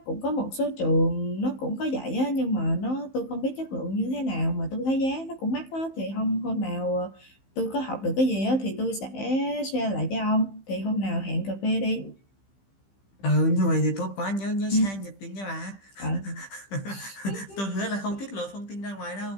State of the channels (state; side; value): late; right; 15 ms